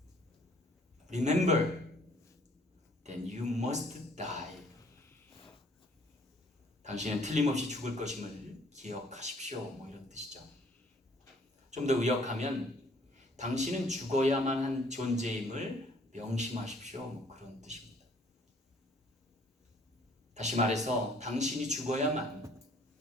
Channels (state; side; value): normal; both; correlation 0.60